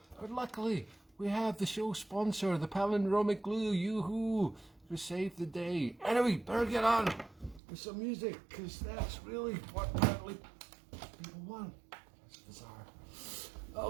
But luckily, we have the show sponsor, the palindromic glue. Yoo-hoo! To save the day. Anyway, better get on with some music, because that's really what apparently people want. That's bizarre.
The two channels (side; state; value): left; drops out; at 7.6 s